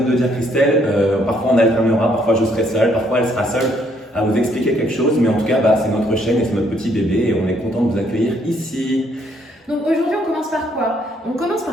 de le dire Christelle, parfois on alternera, parfois je serai seule, parfois elle sera seule à vous expliquer quelque chose. Mais en tout cas, c'est notre chaîne et c'est notre petit bébé et on est content de vous accueillir ici. Donc aujourd'hui on commence par quoi? On commence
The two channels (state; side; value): normal; both; correlation 0.69